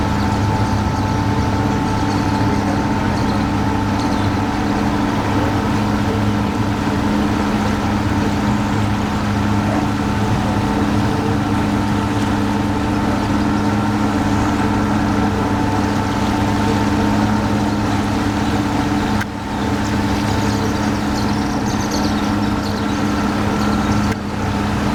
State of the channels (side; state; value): both; identical; correlation 1.00